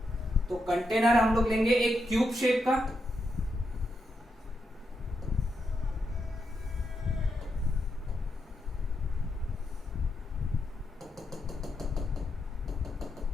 तो कंटेनर हम लोग लेंगे एक क्यूब शेप का,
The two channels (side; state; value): both; normal; correlation 0.83